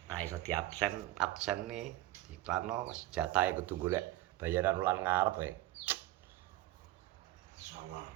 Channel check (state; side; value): quieter; left; 16.2 dB